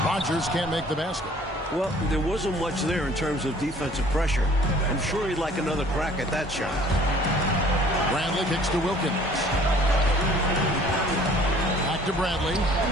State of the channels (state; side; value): normal; both; correlation 0.54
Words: Rogers can't make the basket. Well, there wasn't much there in terms of defensive pressure. I'm sure he'd like another crack at that shot. Bradley kicks to Wilkins. Back to Bradley.